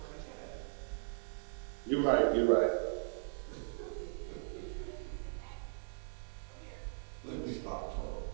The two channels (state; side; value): silent; left; digital silence